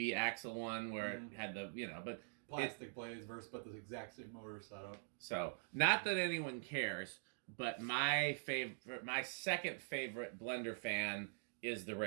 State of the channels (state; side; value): silent; left; digital silence